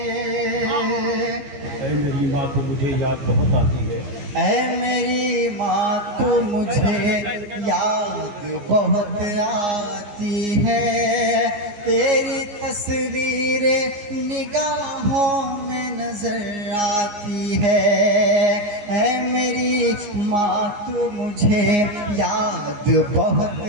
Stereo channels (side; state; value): left; late; 15 ms